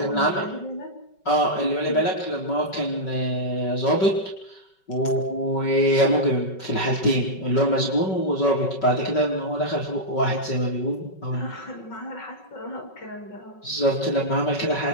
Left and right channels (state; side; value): late; right; 5.4 ms